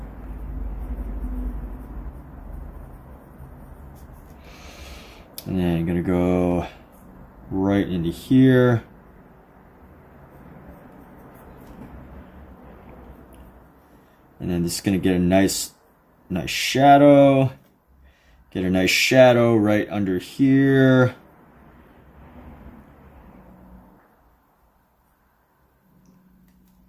And then I'm gonna go right into here. And then just gonna get a nice shadow. Get a nice shadow right under here.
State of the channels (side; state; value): both; identical; correlation 1.00